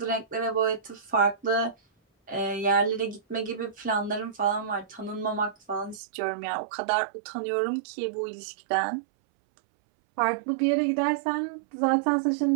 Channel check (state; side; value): drops out; left; at 6.0 s